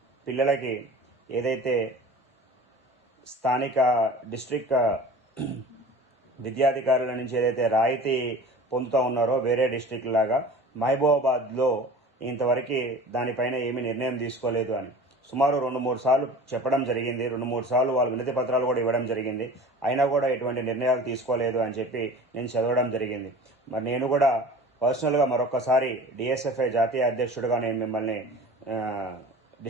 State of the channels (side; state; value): both; normal; correlation 0.40